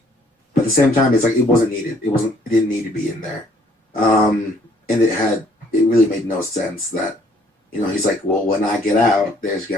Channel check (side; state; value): both; normal; correlation 0.62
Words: But at the same time, it's like it wasn't needed. It didn't need to be in there. And it really made no sense that he's like, well, when I get out, there's